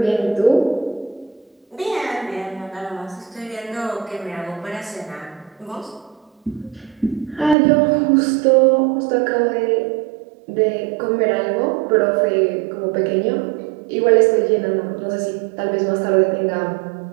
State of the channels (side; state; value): left; drops out; at 7.6 s